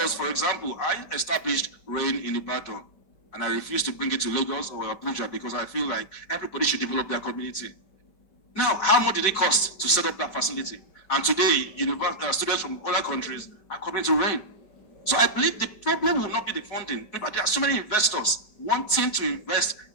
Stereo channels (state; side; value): late; right; 5.1 ms